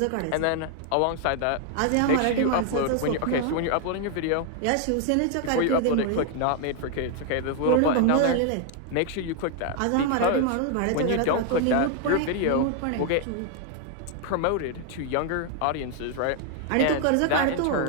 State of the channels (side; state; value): both; different; correlation 0.00